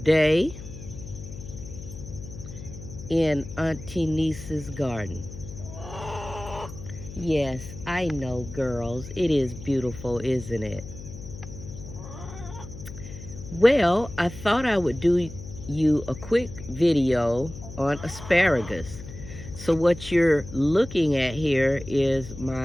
in AN-T-NEES' garden. Yes, I know, girls, it is beautiful, isn't it? Well, I thought I would do you a quick video on asparagus. So what you're looking at here is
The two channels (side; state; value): left; noise; hum, 13 dB below the sound